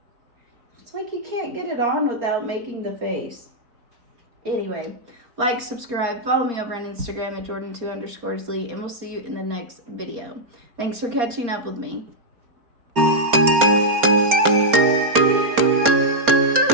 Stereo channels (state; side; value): late; left; 4.3 ms